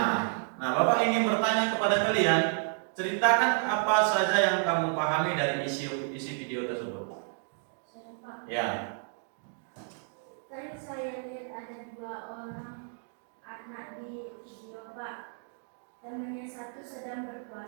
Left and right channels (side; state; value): left; silent; 57 dB below the other